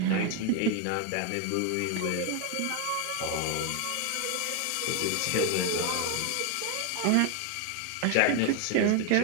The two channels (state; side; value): different; both; correlation 0.01